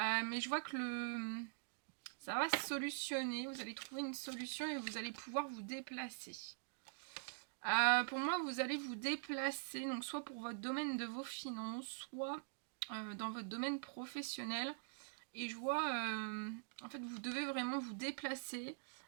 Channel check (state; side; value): silent; left; digital silence